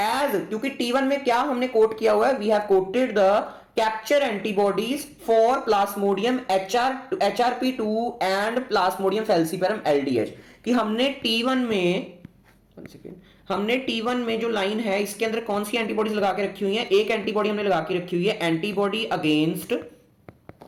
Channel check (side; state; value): both; identical; correlation 1.00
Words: क्योंकि T1 में क्या हमने कोट किया हुआ है, we have coated the capture antibodies for plasmodium HRP2 and plasmodium falciparum LDH, कि हमने T1 में जो लाइन है इसके अंदर कौन सी एंटीबॉडीज लगा के रखी हुई है, एक एंटीबॉडी हमने लगा के रखी हुई है antibody against